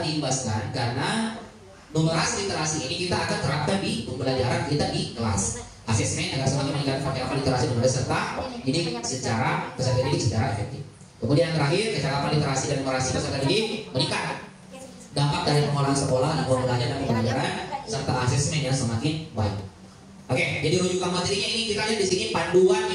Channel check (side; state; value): both; identical; correlation 1.00